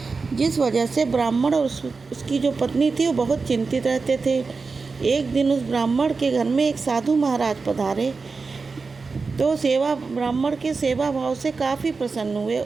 जिस वजह से ब्राह्मण और उसकी जो पत्नी थी वो बहुत चिंतित रहते थे। एक दिन उस ब्राह्मण के घर में एक साधु महाराज पधारे तो ब्राह्मण के सेवा भाव से काफ़ी प्रसन्न हुए।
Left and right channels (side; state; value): left; quieter; 4.4 dB